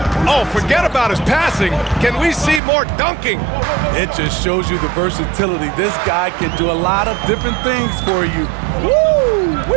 Oh, forget about his passing. Can we see more dunking? It just shows you the versatility. This guy can do a lot of different things for you.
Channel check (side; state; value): left; drops out; at 2.6 s